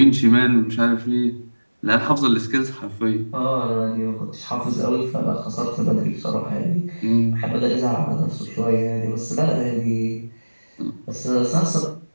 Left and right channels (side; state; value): both; inverted; correlation -1.00